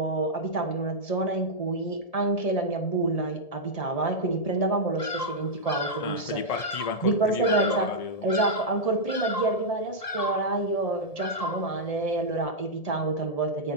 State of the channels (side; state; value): right; late; 1.7 ms